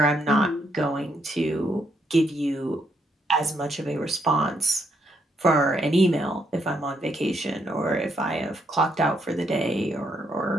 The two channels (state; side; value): normal; both; correlation 0.74